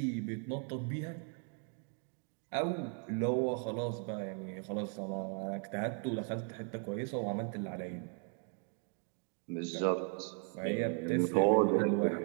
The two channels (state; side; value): quieter; left; 39.9 dB